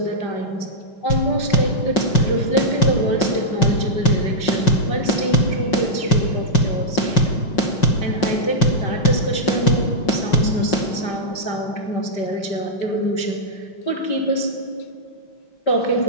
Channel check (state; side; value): late; right; 5.5 ms